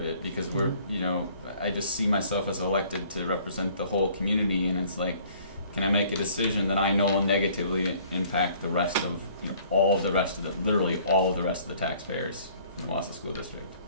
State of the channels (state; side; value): inverted; both; correlation -0.56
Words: it, because we're, you know, I just see myself as elected to represent the whole community, and it's like, can I make a decision that I know will negatively impact the rest of, you know, literally all of the rest of the taxpayers in the Wausau School District?